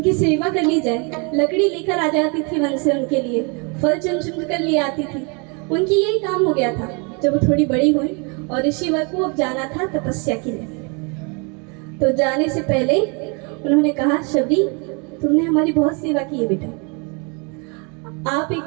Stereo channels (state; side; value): quieter; left; 33.3 dB